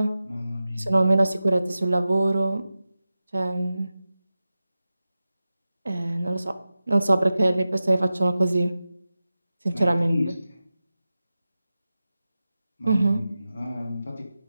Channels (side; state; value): both; inverted; correlation -0.94